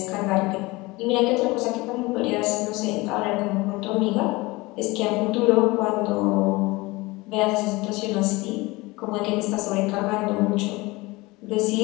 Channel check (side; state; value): right; quieter; 22.4 dB